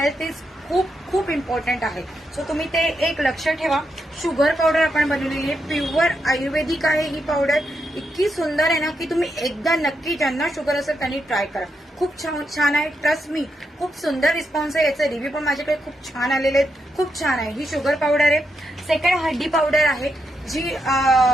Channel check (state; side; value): normal; both; correlation 0.83